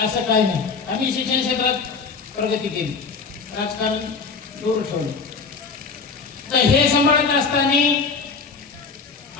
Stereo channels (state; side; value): quieter; right; 4.9 dB